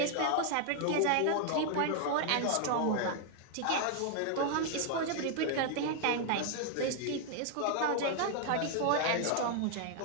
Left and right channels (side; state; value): both; different; correlation 0.00